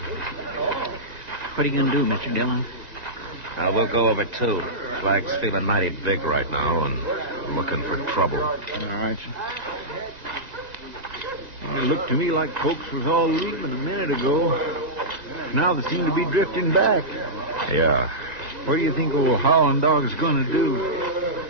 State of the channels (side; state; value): left; late; 1.9 ms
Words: What are you going to do, Mr. Dillon? We'll go over, too. Flag's feeling mighty big right now and looking for trouble. All right, sir. Well, it looked to me like folks was all leaving a minute ago. Now they seem to be drifting back. Yeah. What do you think old Howling Dog's going to do?